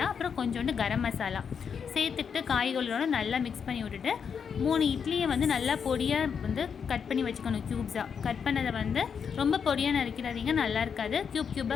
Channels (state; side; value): quieter; right; 6.8 dB